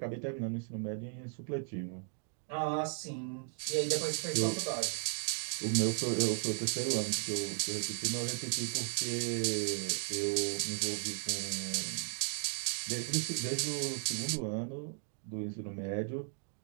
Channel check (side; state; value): left; silent; 54 dB below the other